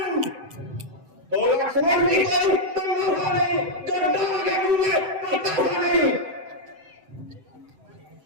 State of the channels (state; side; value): late; left; 7.8 ms